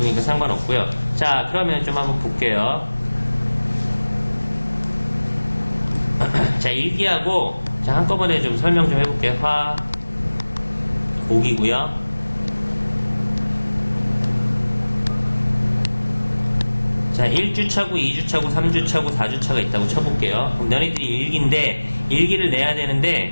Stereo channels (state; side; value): inverted; both; correlation -1.00